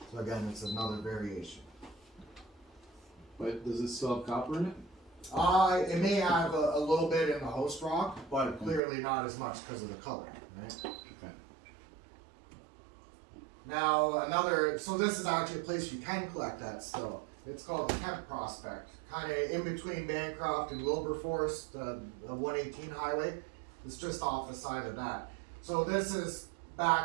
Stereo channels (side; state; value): left; drops out; at 8.8 s